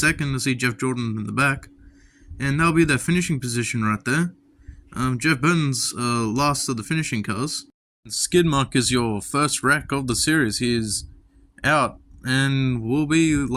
to see Jeff Jordan in the back. And that'll be their finishing position right there. Jeff Burton's last of the finishing cars. Skidmark is your first wreck of the series. He is out and will be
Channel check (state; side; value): identical; both; correlation 1.00